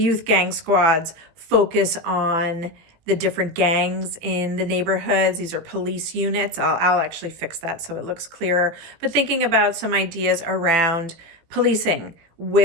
youth gang squads focus on the different gangs in the neighborhoods. These are police units. I'll actually fix that so it looks clearer. But thinking about some ideas around policing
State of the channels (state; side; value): late; left; 18 ms